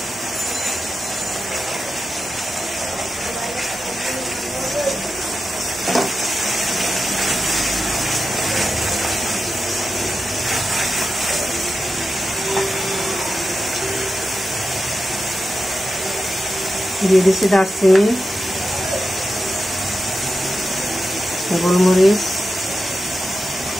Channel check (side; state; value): both; normal; correlation 0.90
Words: দিয়ে দিচ্ছি দারচিনি, গোলমরিচ,